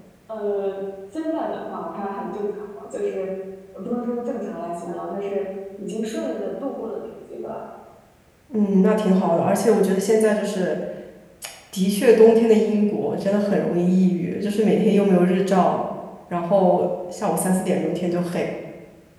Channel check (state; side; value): identical; both; correlation 1.00